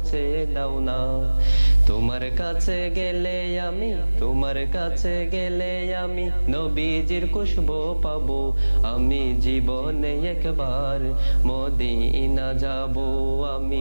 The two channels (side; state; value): both; inverted; correlation -1.00